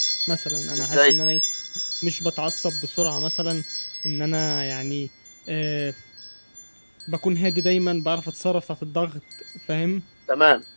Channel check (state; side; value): inverted; both; correlation -1.00